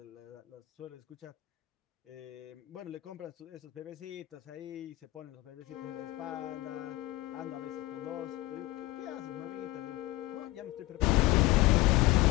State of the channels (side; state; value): right; quieter; 18.1 dB